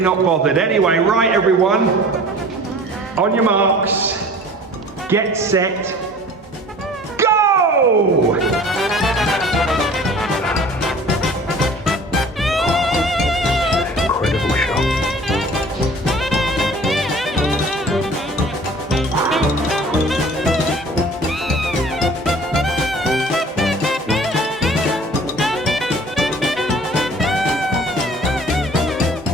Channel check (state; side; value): normal; both; correlation 0.46